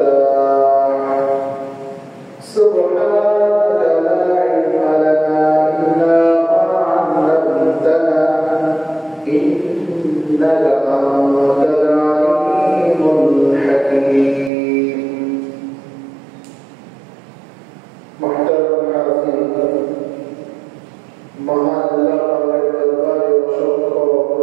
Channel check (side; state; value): left; drops out; at 14.5 s